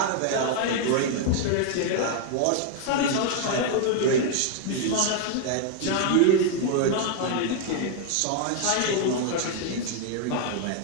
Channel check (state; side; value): different; both; correlation 0.00